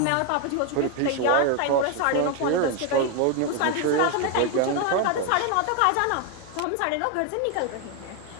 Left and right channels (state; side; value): different; both; correlation 0.01